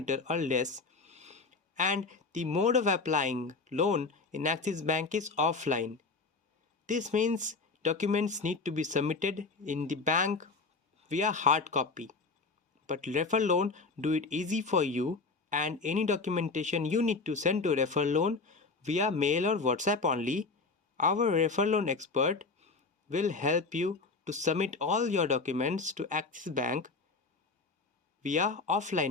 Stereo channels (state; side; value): quieter; right; 4.1 dB